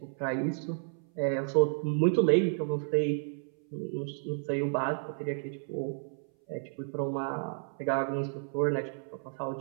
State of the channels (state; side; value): silent; left; 57 dB below the other